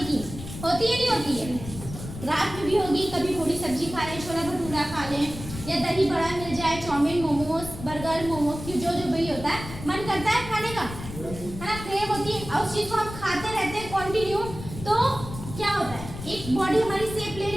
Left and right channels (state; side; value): noise; left; rumble, 11 dB below the sound